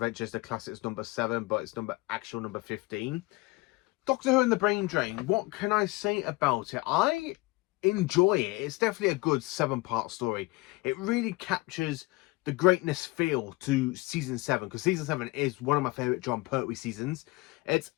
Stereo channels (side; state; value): right; quieter; 22.7 dB